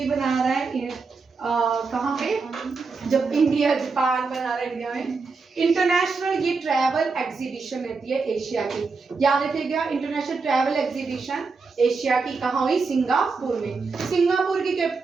बना रहा है। कहाँ पे? जब इंडिया जापान बना रहा है इंडिया में। इंटरनेशनल ये ट्रैवल एग्जीबिशन रहती है एशिया की, याद रखिएगा। इंटरनेशनल ट्रैवल एग्जीबिशन एशिया की कहाँ हुई? सिंगापुर में। सिंगापुर की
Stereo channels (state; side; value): quieter; left; 4.5 dB